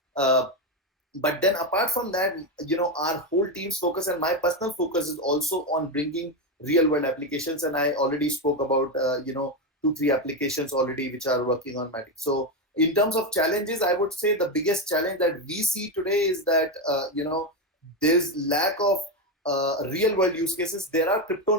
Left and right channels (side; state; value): both; normal; correlation 0.10